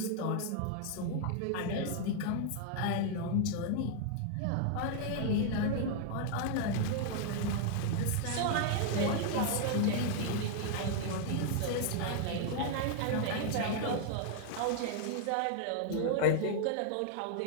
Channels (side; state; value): both; different; correlation 0.00